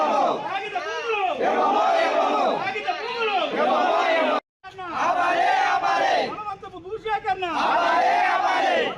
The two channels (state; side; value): identical; both; correlation 1.00